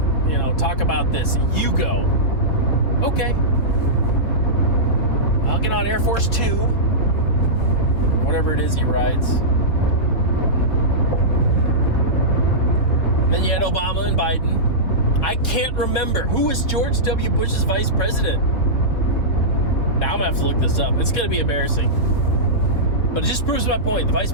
talk about this. You go. Okay. I'll get on Air Force 2. Whatever it is he rides. Then you had Obama and Biden. I can't remember. Who was George W. Bush's vice president? Now I'm going to have to look this up. It's going to be embarrassing. But it just proves my point. The vice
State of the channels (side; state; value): right; late; 3.5 ms